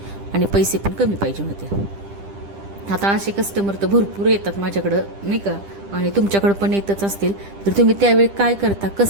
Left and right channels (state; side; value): late; left; 10 ms